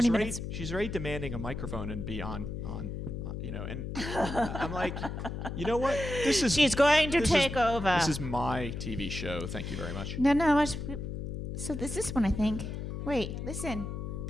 minutes. She's already demanding a microphone and be on and I'm like, you know what? She's going to take over. This is my TV show. Thank you very much. No. So this is one, I think. Wait, listen.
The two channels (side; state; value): left; noise; hum, 5 dB below the sound